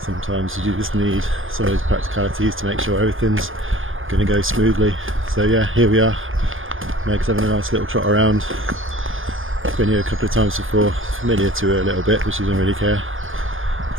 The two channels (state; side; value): late; left; 0.59 ms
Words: Sometimes you just need some of those practicalities to make sure everything's going to go smoothly. So yeah, here we are. Meg's having a nice little trot around. Been here a couple of times before, familiar to her a little bit, but she doesn't really care.